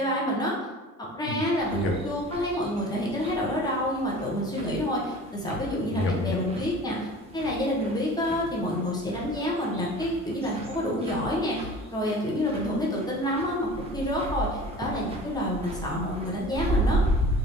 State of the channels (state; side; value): normal; both; correlation 0.41